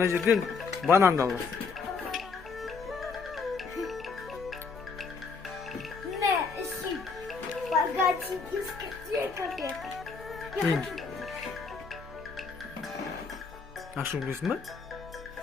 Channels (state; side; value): quieter; right; 4.8 dB